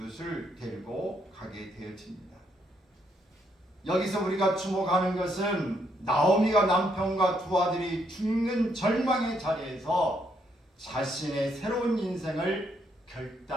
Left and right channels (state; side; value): normal; both; correlation 0.74